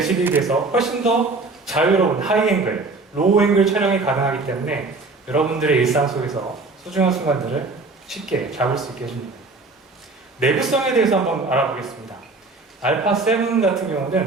비해서 훨씬 더 자유로운 하이앵글, 로우앵글 촬영이 가능하기 때문에 여러분들의 일상 속에서 소중한 순간들을 쉽게 잡을 수 있게 해줍니다. 내구성에 대해서 한번 알아보겠습니다. 알파 7 같은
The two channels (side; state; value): left; quieter; 3.6 dB